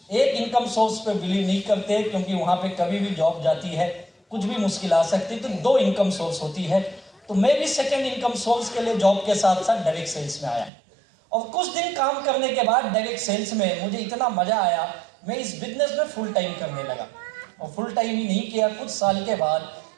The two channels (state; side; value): drops out; left; at 10.7 s